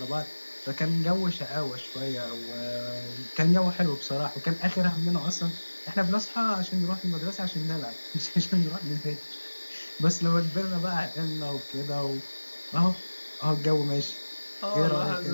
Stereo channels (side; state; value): both; inverted; correlation -1.00